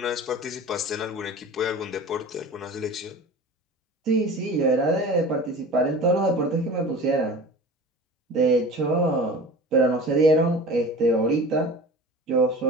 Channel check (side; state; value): both; normal; correlation 0.37